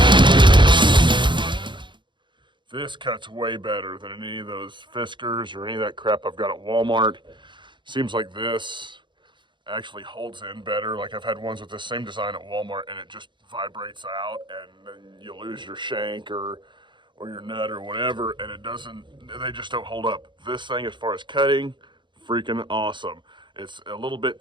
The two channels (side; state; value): left; late; 0.23 ms